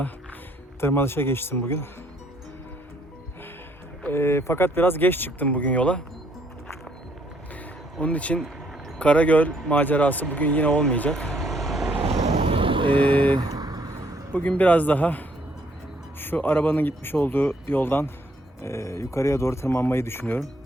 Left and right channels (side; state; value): both; normal; correlation 0.67